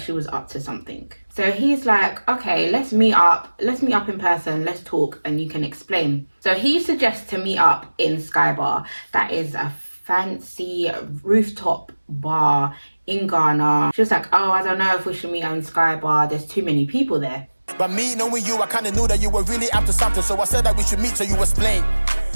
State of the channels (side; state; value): both; inverted; correlation -1.00